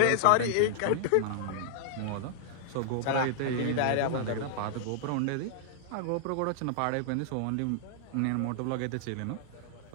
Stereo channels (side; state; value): both; different; correlation -0.01